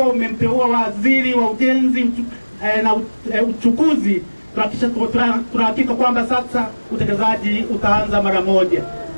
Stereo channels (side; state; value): both; inverted; correlation -1.00